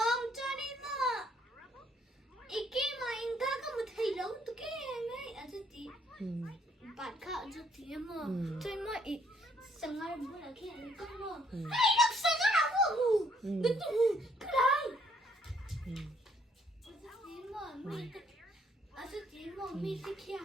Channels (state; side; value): normal; both; correlation 0.67